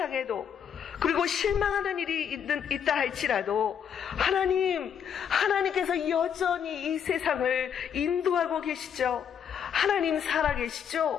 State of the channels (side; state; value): right; quieter; 8.1 dB